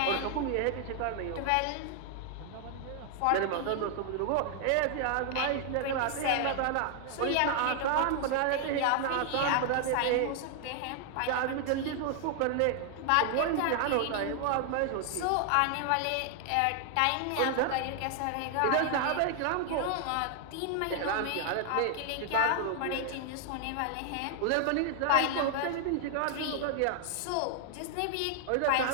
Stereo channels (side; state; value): both; different; correlation 0.00